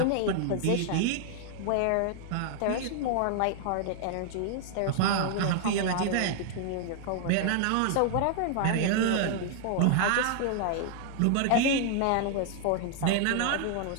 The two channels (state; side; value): different; both; correlation 0.00